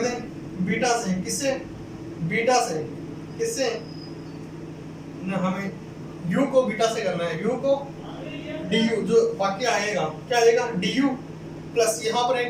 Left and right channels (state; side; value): identical; both; correlation 1.00